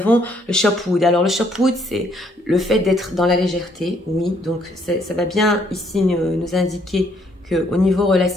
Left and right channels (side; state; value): both; normal; correlation 0.68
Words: le Shopwood. Alors, le Shopwood, c'est le fait d'être dans la légèreté, oui. Donc, ça va bien ici nous indiquer qu'au niveau